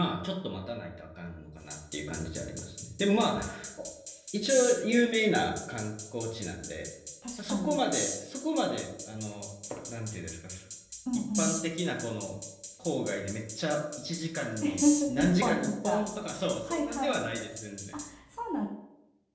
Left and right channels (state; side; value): identical; both; correlation 1.00